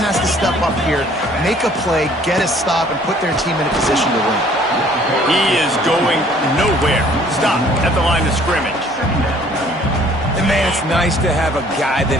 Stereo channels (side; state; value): both; normal; correlation 0.57